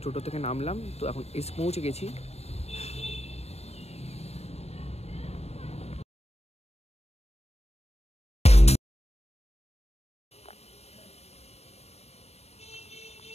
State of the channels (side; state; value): right; late; 0.30 ms